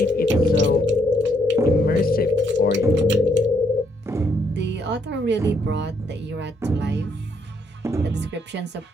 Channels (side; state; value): both; normal; correlation 0.72